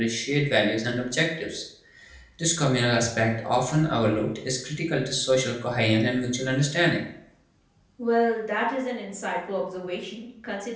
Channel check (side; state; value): both; identical; correlation 1.00